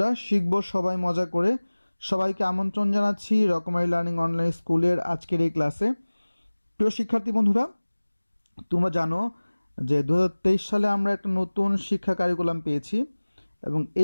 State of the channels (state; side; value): inverted; both; correlation -1.00